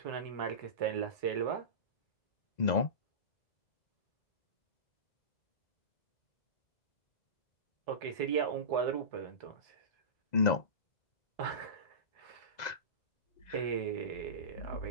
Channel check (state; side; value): late; right; 2.0 ms